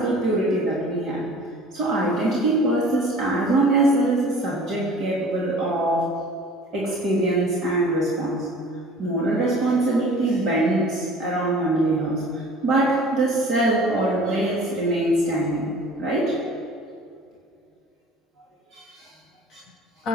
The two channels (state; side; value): normal; both; correlation 0.46